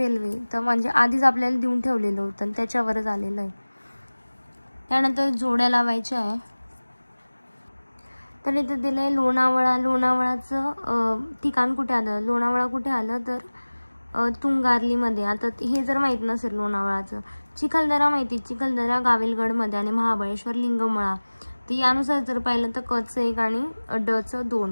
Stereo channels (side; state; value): both; inverted; correlation -1.00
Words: तर म्हणजे आधीच आपल्याला देऊन ठेवलेलं होतं, त्याच्यावरच आलेलं आहे. त्यानंतर जोड्या लावायच्या आहे. तर इथे दिलं आहे लोणावळाचं ठिकाण कुठे आलं? लोणावळा कुठे आलं? तर तुंगार्लीमध्ये. आता हे जर माहीत नसेल लोणावळाचं. चिखलदरा माहिती, चिखलदरा गाविलगडमध्ये आणि महाबळेश्वर लिंगमळा. तर यानुसार जर पाहिलं तर कचं 1 आणि डचं